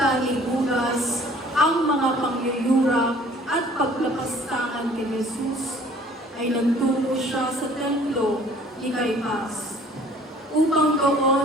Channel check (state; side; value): normal; both; correlation 0.53